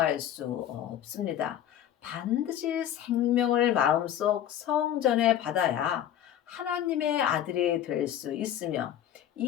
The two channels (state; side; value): quieter; right; 10.8 dB